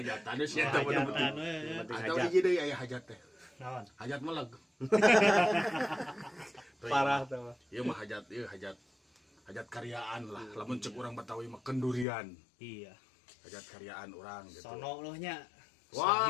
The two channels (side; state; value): right; drops out; at 12.1 s